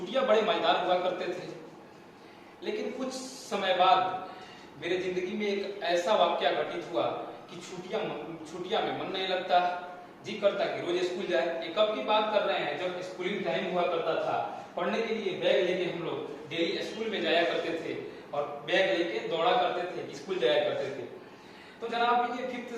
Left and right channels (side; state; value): both; identical; correlation 1.00